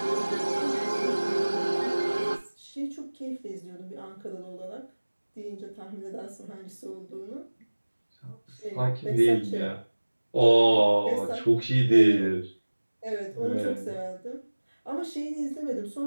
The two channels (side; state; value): both; inverted; correlation -1.00